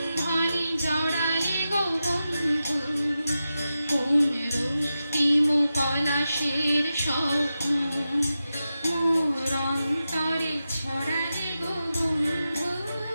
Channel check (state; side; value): inverted; both; correlation -0.91